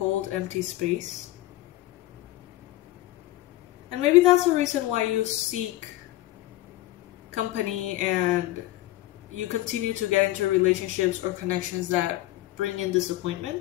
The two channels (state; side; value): quieter; right; 16.3 dB